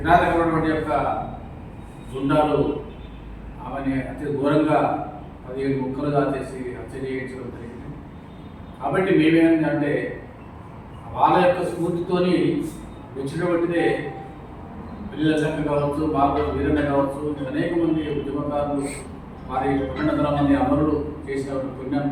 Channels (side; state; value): both; identical; correlation 1.00